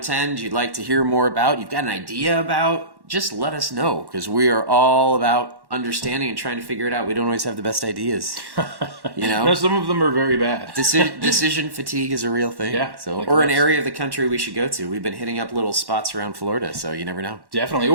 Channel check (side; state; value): left; late; 1.1 ms